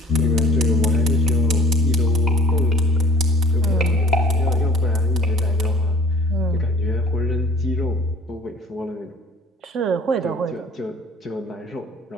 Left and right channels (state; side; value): normal; both; correlation 0.50